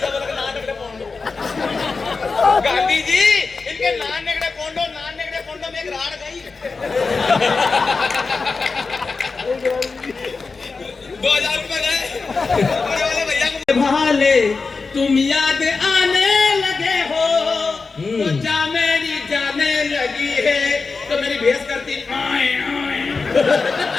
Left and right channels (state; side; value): quieter; right; 4.3 dB